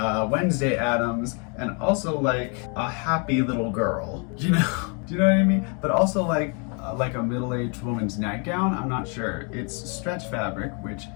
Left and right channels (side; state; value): right; quieter; 36.1 dB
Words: Wednesday Addams, and also like a happy little girl. You know? Do you know what I mean? But also like a middle-aged woman's nightgown. I'm not sure. It's stretch fabric, which